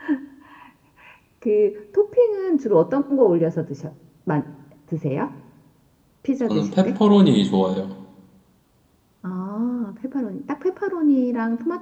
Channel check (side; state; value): both; identical; correlation 1.00